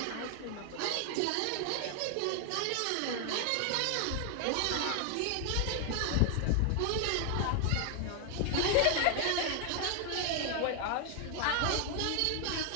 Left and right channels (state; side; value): different; both; correlation 0.00